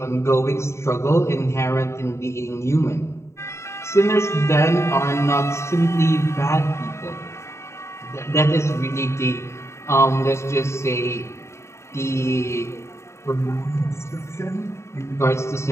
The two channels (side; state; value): right; late; 0.13 ms